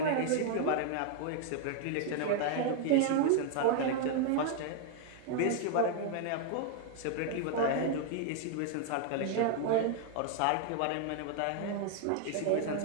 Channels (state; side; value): different; both; correlation 0.00